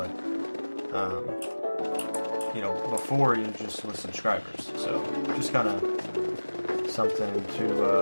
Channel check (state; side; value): inverted; both; correlation -1.00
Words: before it just was subscribers, so just kind of something